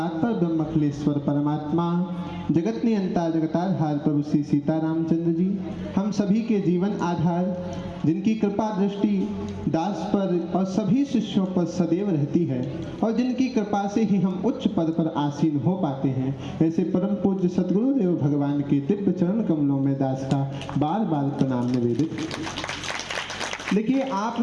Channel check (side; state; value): both; identical; correlation 1.00